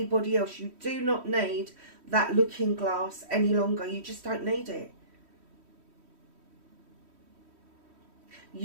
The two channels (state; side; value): late; left; 3.1 ms